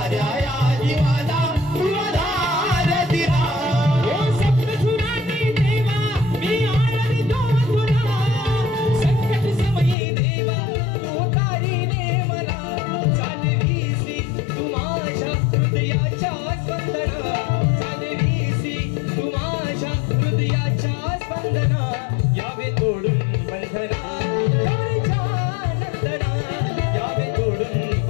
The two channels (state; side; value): drops out; right; at 10.0 s